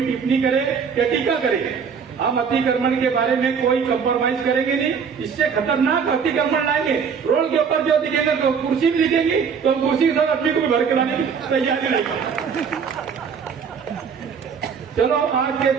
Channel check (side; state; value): left; quieter; 6.4 dB